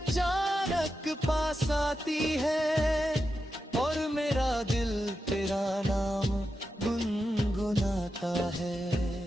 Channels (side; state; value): both; normal; correlation 0.89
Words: पास आती है, और मेरा दिल तेरा नाम गुनगुनाता है।